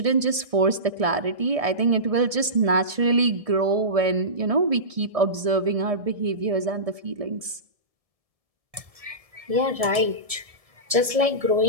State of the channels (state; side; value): late; left; 1.7 ms